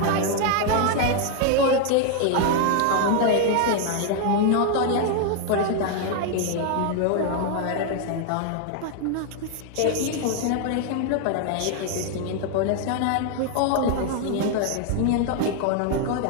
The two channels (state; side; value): different; both; correlation 0.00